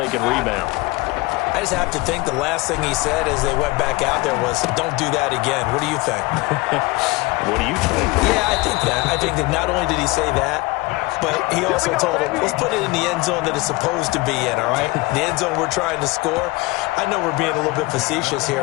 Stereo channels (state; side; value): quieter; right; 22.8 dB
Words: can rebound. I just have to think the last thing he said as they went back out there was, don't do that again. What do you think? What do you think? Yeah, I think that. I think that not only did he say that, but he also told him, let's put it in the end zone that it's supposed to be in, all right? The end zone we're trying to score. I know we're being a little bit facetious